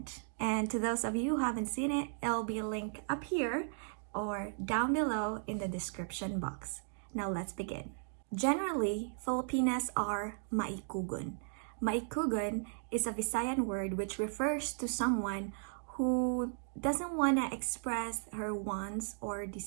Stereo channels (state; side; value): silent; left; digital silence